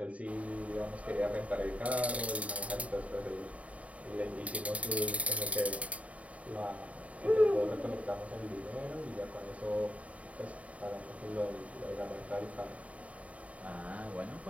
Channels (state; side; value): late; left; 0.067 ms